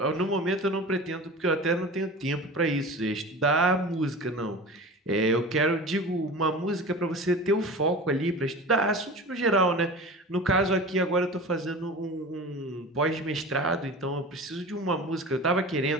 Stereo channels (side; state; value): both; normal; correlation 0.34